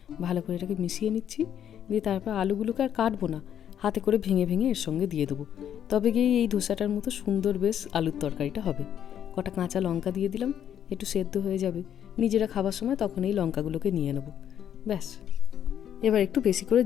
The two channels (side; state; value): right; quieter; 9.7 dB